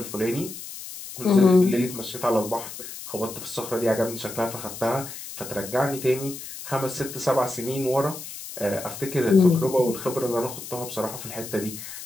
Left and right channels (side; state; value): left; noise; hiss, 11 dB below the sound